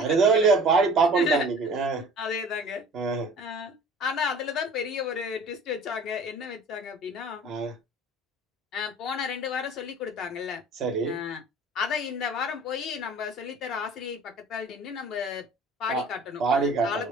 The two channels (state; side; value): normal; both; correlation 0.45